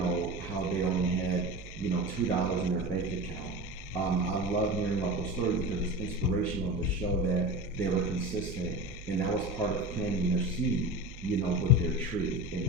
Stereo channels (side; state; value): right; noise; hum, 16 dB below the sound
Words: how they only had, $2 in their bank account. I love hearing about those stories because it's inspirational to show that they were consistent, and that was part of planting their seed, with their tree. And